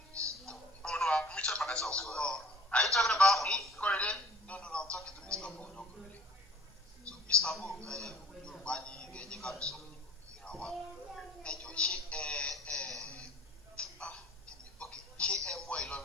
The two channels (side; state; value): both; normal; correlation 0.50